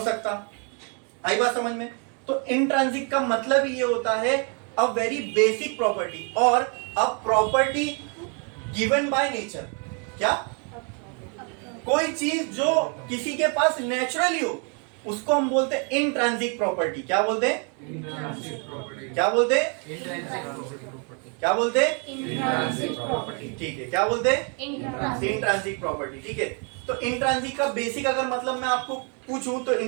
सकता। आई बात समझ में। तो इंट्रिंसिक का मतलब ये होता है अ वेरी बेसिक प्रॉपर्टी, और a property given by nature, क्या, कोई चीज जो किसी के पास नेचुरली हो उसको हम बोलते हैं इंट्रिंसिक प्रॉपर्टी। क्या बोलते हैं, क्या बोलते हैं, क्या बोलते हैं, ठीक है, क्या बोलते हैं, इंट्रिंसिक प्रॉपर्टी, ठीक है। तो इंट्रिंसिक का बेसिक अगर मतलब मैं आपको पूछूं तो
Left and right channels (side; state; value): left; quieter; 37.7 dB